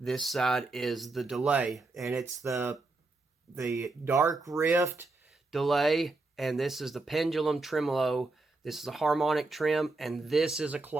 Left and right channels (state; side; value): quieter; left; 3.3 dB